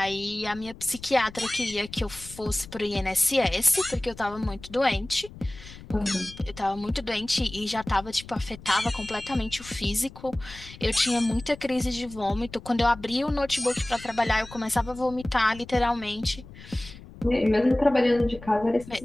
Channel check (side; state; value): left; noise; rumble, 17 dB below the sound